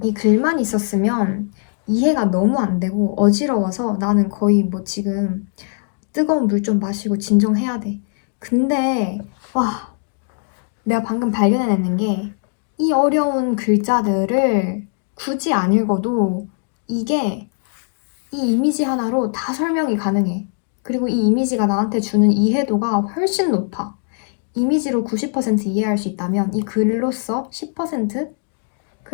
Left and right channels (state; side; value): silent; right; 66 dB below the other